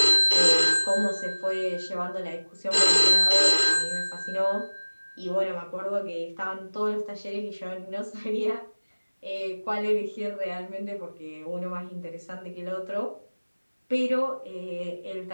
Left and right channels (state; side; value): inverted; both; correlation -1.00